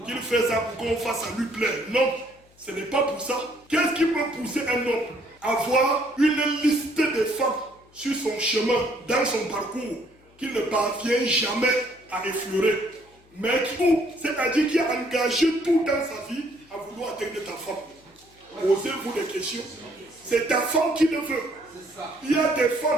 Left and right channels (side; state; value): left; noise; hum, 30 dB below the sound